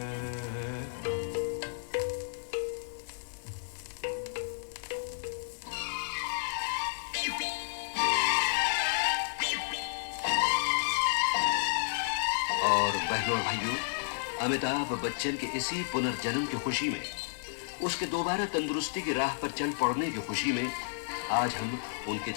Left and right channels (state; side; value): silent; right; digital silence